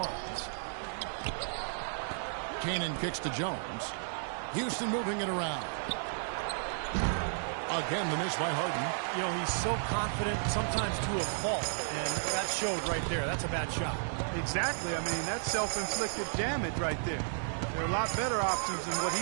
Canaan kicks to Jones. Houston moving it around. Again, the miss by Harden. He's so confident, sometimes to a fault, and that showed right there. That's a bad shot. Exactly. I mean, that's self-inflicted damage right there. There are a lot better options than what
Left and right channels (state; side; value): silent; left; digital silence